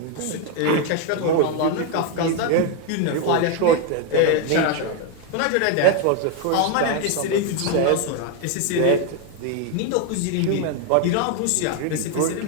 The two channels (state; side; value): different; both; correlation 0.01